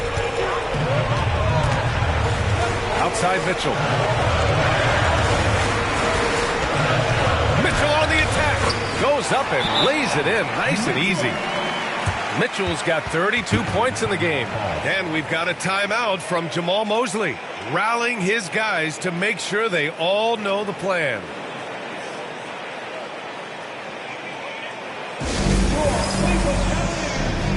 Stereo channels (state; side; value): identical; both; correlation 1.00